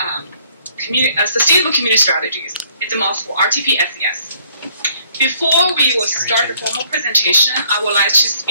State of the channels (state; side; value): inverted; both; correlation -0.63